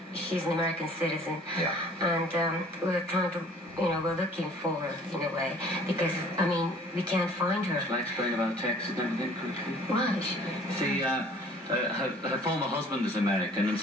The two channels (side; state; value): both; normal; correlation 0.52